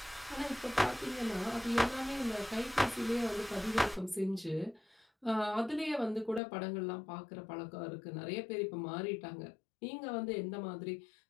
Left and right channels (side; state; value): right; drops out; at 6.4 s